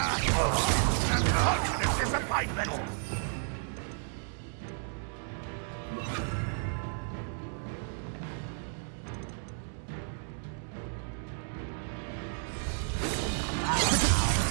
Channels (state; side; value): silent; left; 56 dB below the other